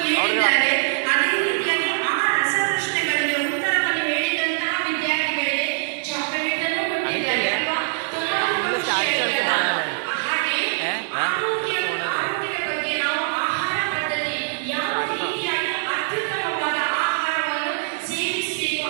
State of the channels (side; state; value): left; silent; digital silence